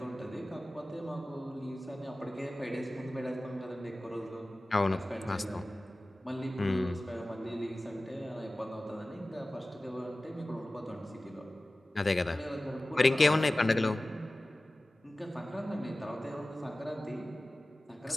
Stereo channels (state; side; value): normal; both; correlation 0.97